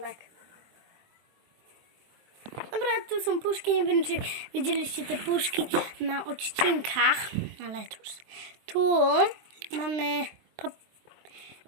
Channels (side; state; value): left; late; 23 ms